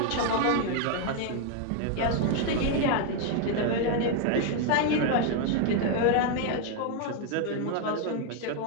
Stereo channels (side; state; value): both; different; correlation 0.01